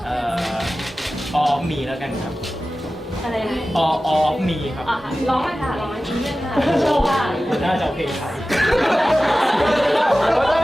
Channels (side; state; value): both; normal; correlation 0.95